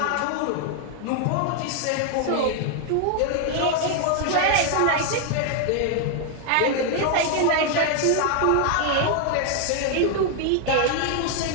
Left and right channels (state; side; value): different; both; correlation 0.00